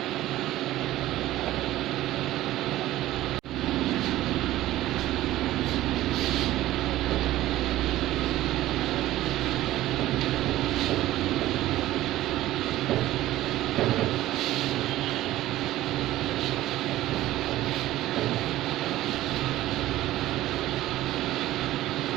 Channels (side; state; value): left; quieter; 15.3 dB